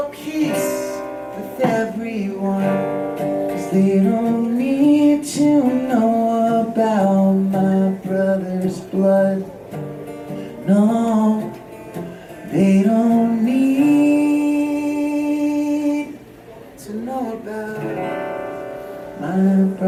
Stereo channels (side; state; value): both; identical; correlation 1.00